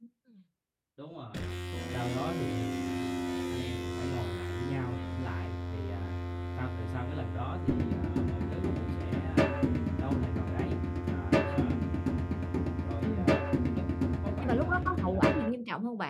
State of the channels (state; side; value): identical; both; correlation 1.00